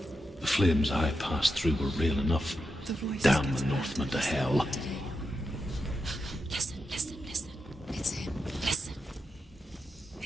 The flames I passed through were real enough. The voice Damn gets the Northmen to hell. Listen, listen, listen. It's him. Listen.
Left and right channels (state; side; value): normal; both; correlation 0.87